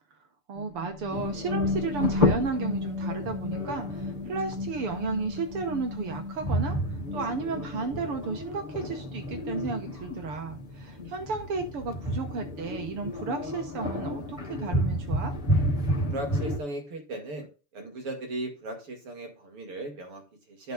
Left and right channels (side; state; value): left; late; 6.9 ms